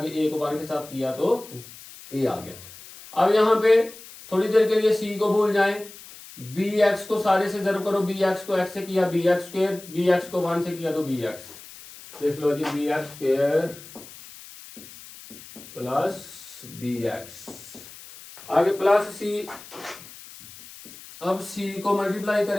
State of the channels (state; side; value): noise; left; hiss, 17 dB below the sound